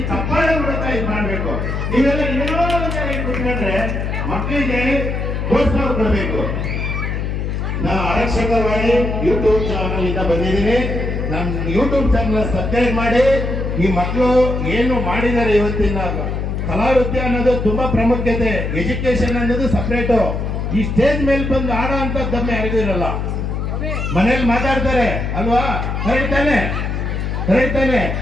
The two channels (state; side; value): noise; left; hum, 2 dB below the sound